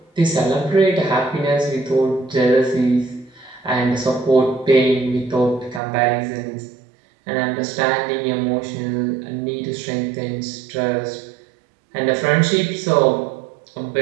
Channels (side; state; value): left; drops out; at 5.8 s